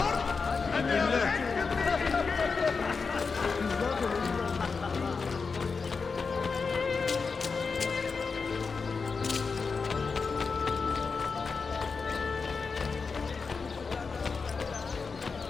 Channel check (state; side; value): quieter; right; 4.9 dB